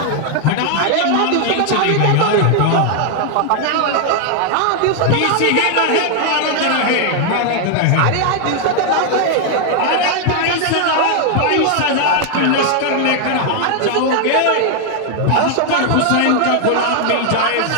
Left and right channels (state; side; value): different; both; correlation 0.00